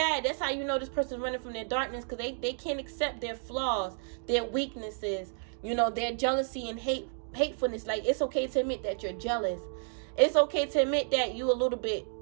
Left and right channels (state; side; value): silent; left; digital silence